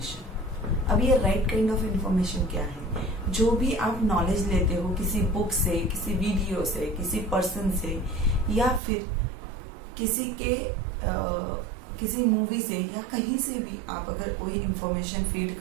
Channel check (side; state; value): left; drops out; at 8.8 s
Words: अब ये राइट काइंड ऑफ इंफॉर्मेशन क्या है? जो भी आप नॉलेज लेते हो किसी बुक से, किसी वीडियो से, किसी पर्सन से, या फिर किसी मूवी से, या कहीं से भी आप अगर कोई इंफॉर्मेशन फीड